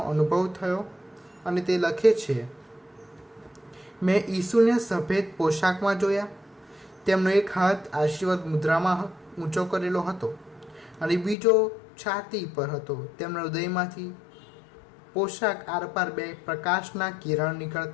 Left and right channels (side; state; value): right; drops out; at 11.4 s